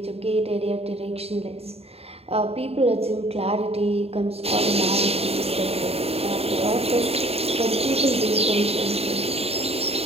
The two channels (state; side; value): late; left; 0.29 ms